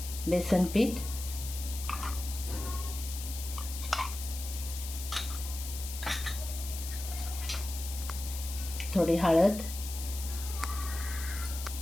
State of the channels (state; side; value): noise; left; hiss, 9 dB below the sound